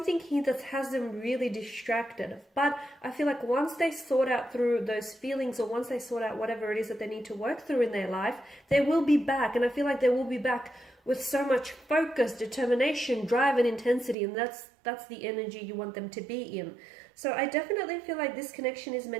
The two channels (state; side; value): drops out; left; at 14.2 s